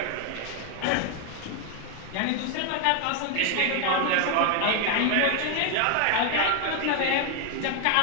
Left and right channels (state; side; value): different; both; correlation 0.01